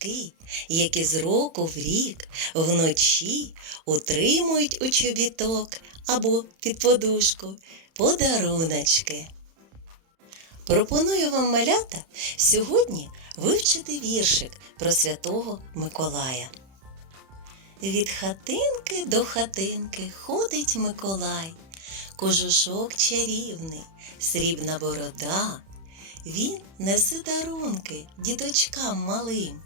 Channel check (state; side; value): late; left; 31 ms